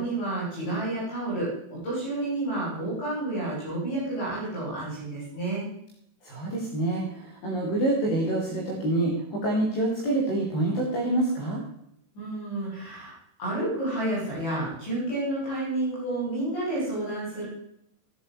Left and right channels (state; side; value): late; right; 18 ms